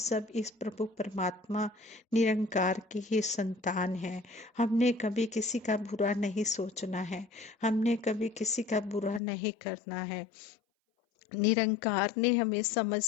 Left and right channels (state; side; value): drops out; right; at 9.2 s